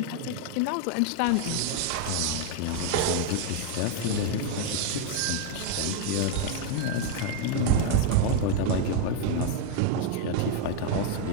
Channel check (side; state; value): both; different; correlation 0.00